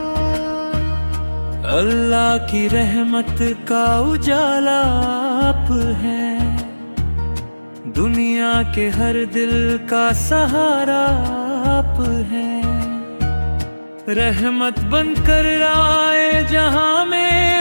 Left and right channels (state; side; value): inverted; both; correlation -1.00